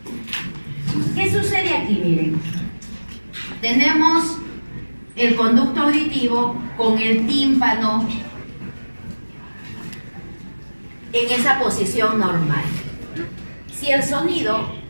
¿Qué sucede aquí? Miren, tenemos el conducto auditivo con el tímpano en esa posición normal. Si el sonido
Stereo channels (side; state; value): both; inverted; correlation -1.00